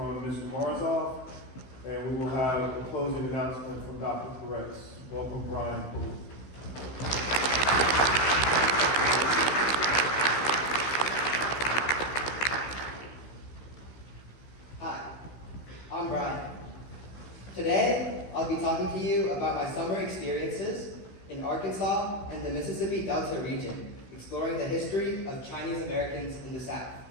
Mr. Morozov, and we will have a closing announcement from Dr. Peretz. Welcome, Brian. Hi, I'm Brian. Today, I'll be talking to you about my summer experiences in Arkansas and the Mississippi Delta region, exploring the history of Chinese Americans in the South.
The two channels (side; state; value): right; late; 15 ms